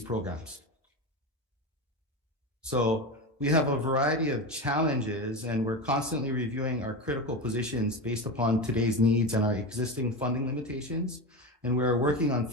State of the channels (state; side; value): normal; both; correlation 0.21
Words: So we have a variety of challenges, and we're constantly reviewing our critical positions based upon today's needs and our existing funding limitations. And we're working on